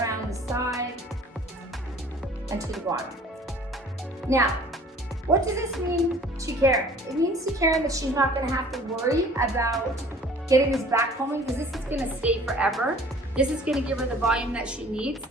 the side and to the bottom. Now, what does this mean to Karen? It means to Karen that she's not gonna have to worry about getting this back combing, because this is gonna stay forever. This is gonna give her the volume that she needs.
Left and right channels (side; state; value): both; normal; correlation 0.50